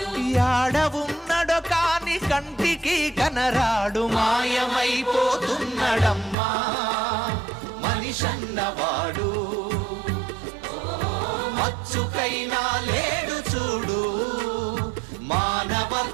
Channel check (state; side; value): drops out; left; at 6.4 s